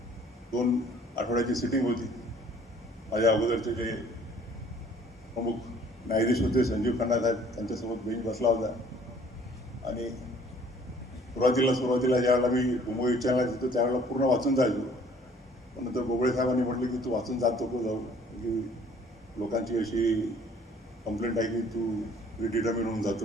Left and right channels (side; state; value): both; normal; correlation 0.56